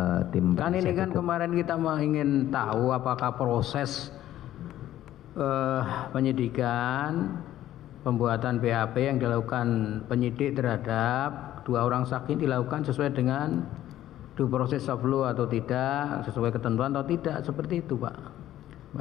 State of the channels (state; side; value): quieter; right; 13.1 dB